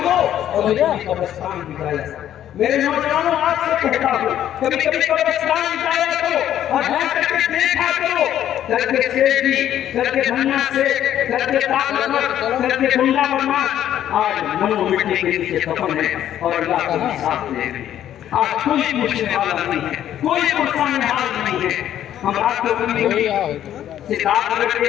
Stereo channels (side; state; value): right; quieter; 11.2 dB